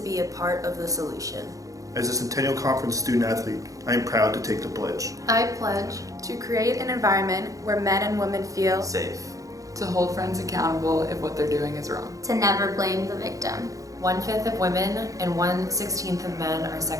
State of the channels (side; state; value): left; late; 0.16 ms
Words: be a part of the solution. As a Centennial Conference student athlete, I am proud to take the pledge. I pledge to create an environment where men and women feel safe. To hold friends accountable if what they're doing is wrong. To never blame the victim. 1/5 of women and 1/16 of men are